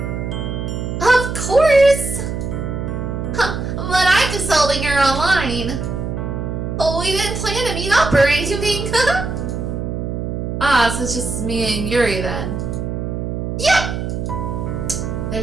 Of course! her online. But we didn't plan to meet up or anything. Ah, so it's just me and Yuri then. Yep.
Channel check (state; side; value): noise; right; hum, 4 dB below the sound